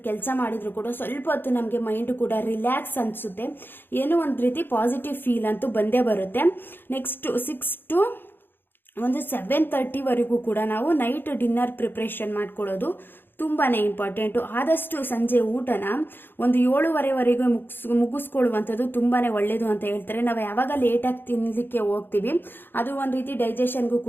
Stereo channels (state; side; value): late; right; 0.099 ms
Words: ಕೆಲಸ ಮಾಡಿದ್ರು ಕೂಡ ಸ್ವಲ್ಪ ಹೊತ್ತು ನಮಗೆ ಮೈಂಡ್ ಕೂಡ ರಿಲ್ಯಾಕ್ಸ್ ಅನಿಸುತ್ತೆ. ಏನೋ ಒಂದು ರೀತಿ ಪಾಸಿಟಿವ್ ಫೀಲ್ ಅಂತೂ ಬಂದೇ ಬರುತ್ತೆ. ನೆಕ್ಸ್ಟ್ 6 ಟು 7:30ವರೆಗೂ ಕೂಡ ನಾವು ನೈಟ್ ಡಿನ್ನರ್ ಪ್ರಿಪ್ರೇಷನ್ ಮಾಡ್ಕೊಳ್ಳೋದು ತುಂಬಾ ಇಂಪಾರ್ಟೆಂಟು. ಆದಷ್ಟು ಸಂಜೆ ಊಟನ 7:15ವರೆಗೂ ಮುಗಿಸ್ಕೊಳ್ಳುವಂಥದ್ದು ತುಂಬಾ ಒಳ್ಳೆಯದು ಅಂತ ಹೇಳ್ತಾರೆ. ನಾವು ಯಾವಾಗ ಲೇಟಾಗಿ ತಿನ್ನಲಿಕ್ಕೆ ಹೋಗ್ತೀವಿ ಅದು ಒಂದು ರೀತಿ ಡೈಜೆಷನ್ಗೂ